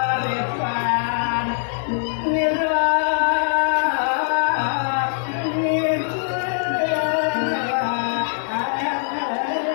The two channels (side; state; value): right; silent; 64 dB below the other